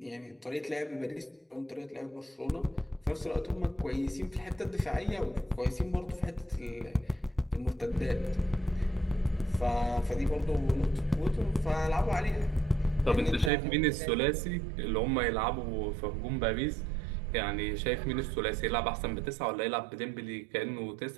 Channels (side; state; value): left; drops out; at 13.5 s